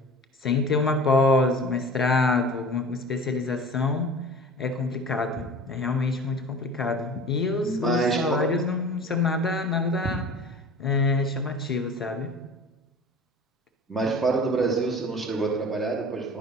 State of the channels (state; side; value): normal; both; correlation 0.40